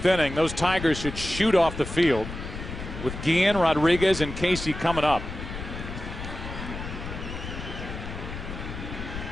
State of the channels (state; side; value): noise; left; rumble, 8 dB below the sound